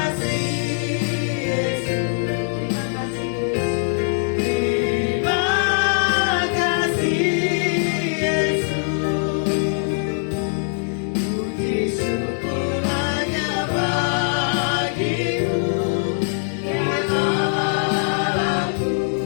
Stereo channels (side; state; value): right; silent; digital silence